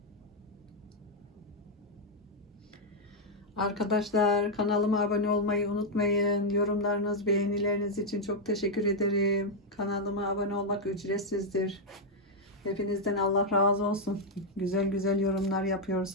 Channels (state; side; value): normal; both; correlation -0.01